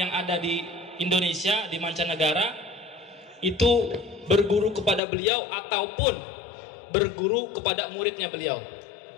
ada di Indonesia, di mancanegara, itu berguru kepada beliau ataupun berguru kepada muridnya beliau.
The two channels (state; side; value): drops out; right; at 5.0 s